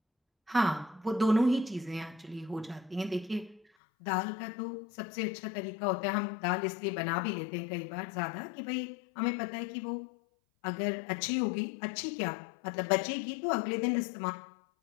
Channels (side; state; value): right; drops out; at 3.7 s